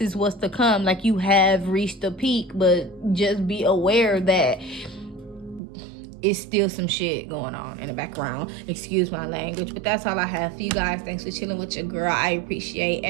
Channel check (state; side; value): drops out; left; at 5.6 s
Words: is what's to come. Like, you have reached the peak, but just be aware that it's still some shit going on in the background. Excuse my language, but that's all I have for you guys. Thanks for chilling with your girl. I appreciate